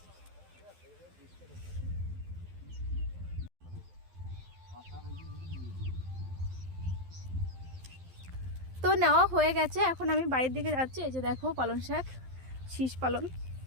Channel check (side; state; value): left; late; 12 ms